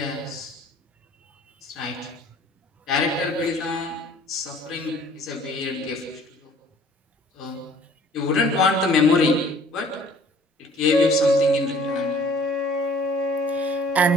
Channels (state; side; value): normal; both; correlation 0.54